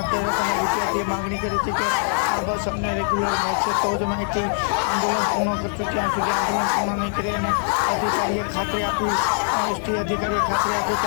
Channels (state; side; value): silent; right; digital silence